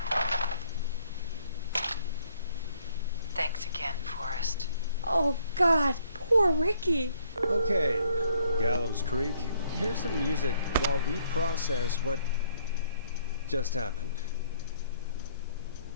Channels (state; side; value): inverted; both; correlation -0.66